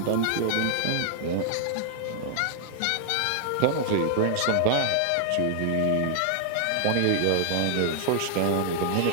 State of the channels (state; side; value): different; both; correlation 0.00